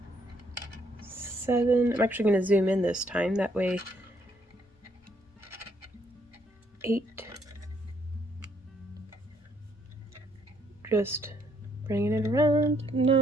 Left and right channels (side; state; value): both; normal; correlation 0.69